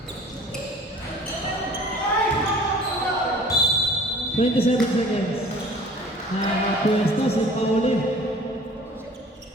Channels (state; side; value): normal; both; correlation 0.48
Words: Twenty-seven seconds. Pwesto sa pauli.